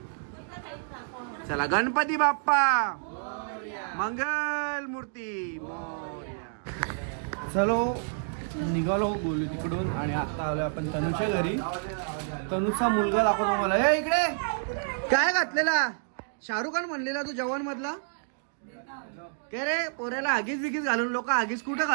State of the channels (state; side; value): silent; left; digital silence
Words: चला गणपती बाप्पा मंगल मूर्ती मोरया. चलो निघालो बोलू तिकडून. आणि आता आलो आपण तनुच्या घरी. तनुचा मुलगा दाखवतो मला. हे इकडे काय घातलेला? शाहरुख खान म्हणलेला तू जवान मधला. काय रे पोऱ्याला आगीच बिगीच घालून लोक आगीच कुठं